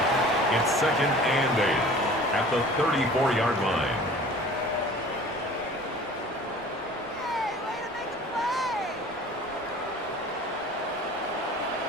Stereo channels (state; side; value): normal; both; correlation 0.45